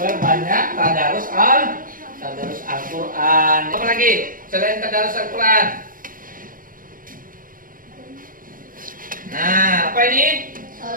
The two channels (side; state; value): left; late; 0.40 ms